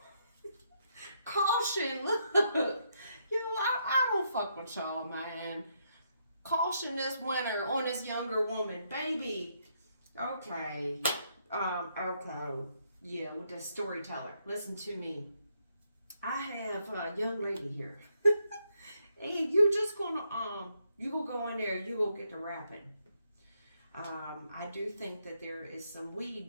Caution, look. I don't fuck with y'all, man. Caution this winter on this younger woman. Baby, okay. Okay. Yeah, with the storyteller. Listen to me. I have a young lady here. And you're just gonna you gonna go in there, you gonna get to rapping. I do think that there is some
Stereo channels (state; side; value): inverted; both; correlation -0.76